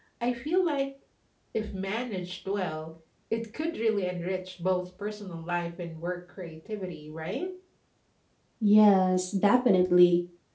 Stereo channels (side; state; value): both; identical; correlation 1.00